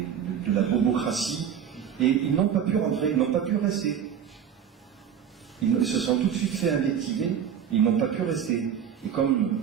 de la bobocratie, et ils n'ont pas pu rentrer, ils n'ont pas pu rester. Ils se sont tout de suite fait invectiver, ils n'ont pas pu rester. Et comme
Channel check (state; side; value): quieter; left; 8.5 dB